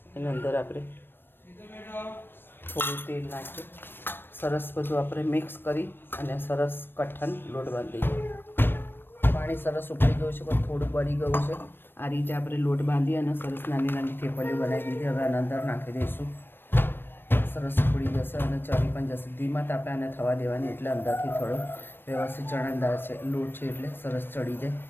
એના અંદર આપણે થોડું તેલ નાખીએ. સરસ બધું આપણે મિક્સ કરી અને સરસ કઠણ લોટ બાંધી દઈએ. પાણી સરસ ઉકળી ગયું છે, પણ થોડું બળી ગયું છે. આ રીતે આપણે લોટ બાંધી અને સરસ નાની નાની થેપલીઓ બનાવી દીધી. હવે આના અંદર નાખી દઈશું. સરસ ઉકળી જશે અને ચડી પણ જશે. ધીમા તાપે આને થવા દેવાની, એટલે અંદરથી થોડો વ્યવસ્થિત ચણાદાર છે લોટ છે એટલે સરસ ચડી જાય.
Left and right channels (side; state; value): right; late; 0.098 ms